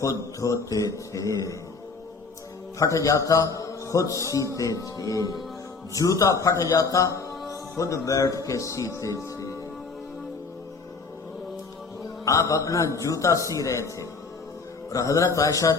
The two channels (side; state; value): right; quieter; 4.4 dB